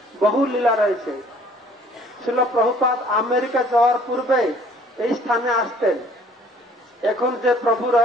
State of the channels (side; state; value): both; normal; correlation 0.56